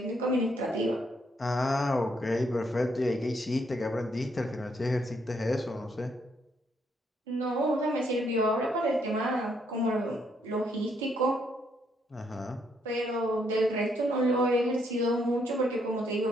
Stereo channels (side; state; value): both; normal; correlation 0.73